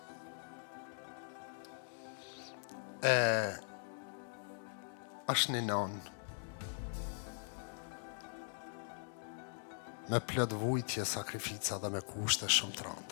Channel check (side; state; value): right; silent; digital silence